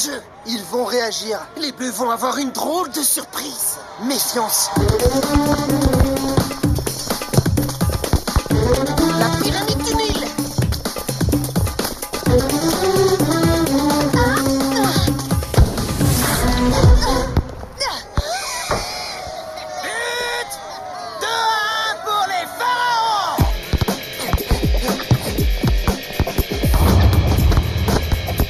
Ils vont réagir. Les Bleus vont avoir une drôle de surprise. Méfiance. La pyramide du Nil. But 2-1 pour les Pharaons.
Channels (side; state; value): both; identical; correlation 1.00